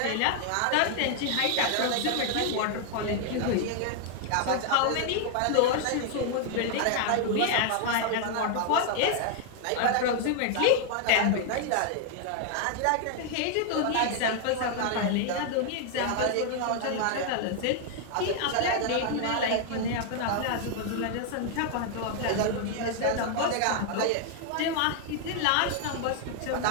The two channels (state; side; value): different; both; correlation 0.00